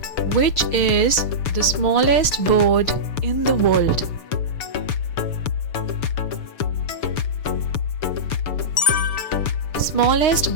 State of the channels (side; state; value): right; late; 6.9 ms